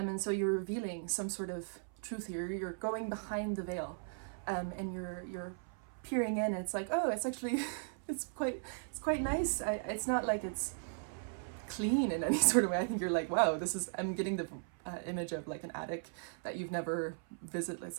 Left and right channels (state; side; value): silent; left; 53 dB below the other